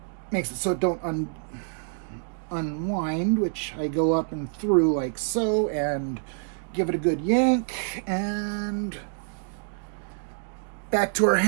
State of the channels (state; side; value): silent; left; 60 dB below the other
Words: makes it so it don't unwind, which I go up and through like so, and give it a good yank, and back to our